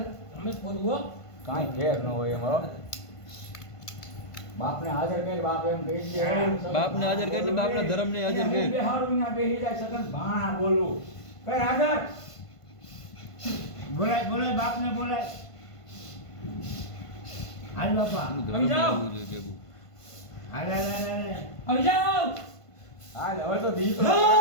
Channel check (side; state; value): right; late; 1.5 ms